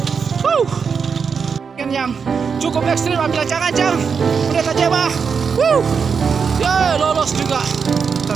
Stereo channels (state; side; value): quieter; left; 6.0 dB